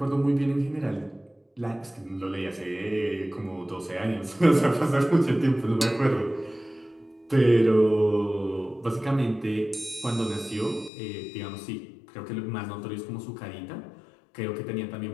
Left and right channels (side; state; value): right; drops out; at 10.9 s